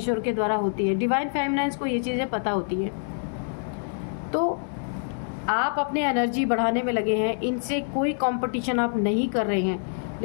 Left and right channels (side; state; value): right; silent; digital silence